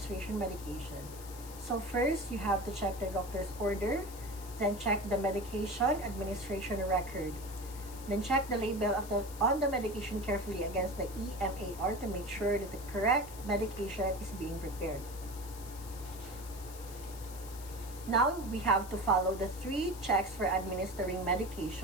medication. So first, you have to check the doctor's order, then check the medication administration record. Then check the label on the medication carefully against the EMAR to make sure that the correct medication is being prepared. Now, we have to follow the 3 checks for administering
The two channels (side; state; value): left; noise; hiss, 15 dB below the sound